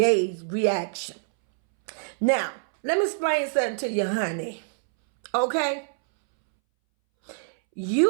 reaction. Now, let me explain something to you, honey. Okay?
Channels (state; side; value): silent; left; 62 dB below the other